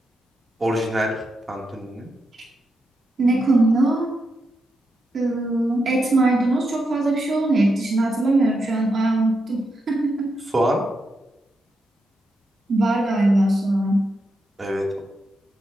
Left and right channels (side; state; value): both; normal; correlation 0.85